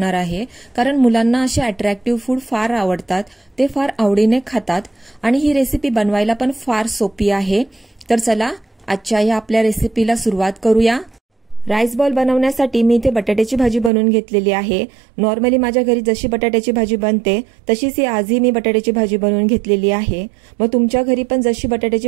आहे, कारण मुलांना असे अट्रॅक्टिव्ह फूड फार आवडतात, ते फार आवडीने खातात आणि ही रेसिपी बनवायला पण फार सोपी आहे। तर चला आजच्या या आपल्या रेसिपीला सुरुवात करूया। राईस बॉल बनवण्यासाठी मी इथे बटाट्याची भाजी बनवून घेतलेली आहे। नॉर्मली माझ्या घरी जशी बटाट्याची भाजी बनते तशीच ही आजही मी बटाट्याची भाजी बनवून घेतलेली आहे। मग तुमच्या घरी पण जशी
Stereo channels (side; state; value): left; drops out; at 13.9 s